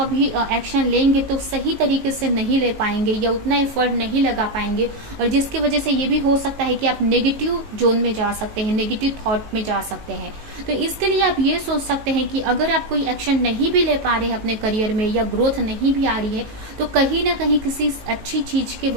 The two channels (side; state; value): left; late; 18 ms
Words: एक्शन लेंगे तो सही तरीके से नहीं ले पाएंगे या उतना एफर्ट नहीं लगा पाएंगे, और जिसकी वजह से ये भी हो सकता है कि आप नेगेटिव जोन में जा सकते हैं, नेगेटिव थॉट में जा सकते हैं। तो इसके लिए आप ये सोच सकते हैं कि अगर आप कोई एक्शन नहीं भी ले पा रहे हैं अपने करियर में, या ग्रोथ नहीं भी आ रही है, तो कहीं ना कहीं किसी अच्छी चीज के